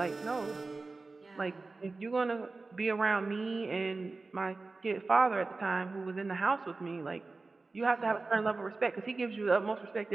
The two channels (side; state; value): left; quieter; 3.7 dB